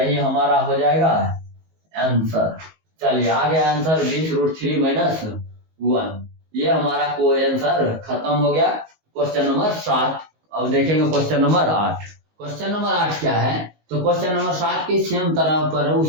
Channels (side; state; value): left; late; 19 ms